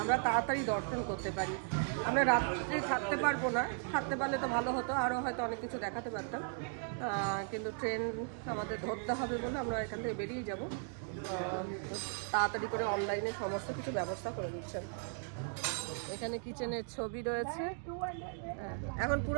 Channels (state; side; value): silent; left; 53 dB below the other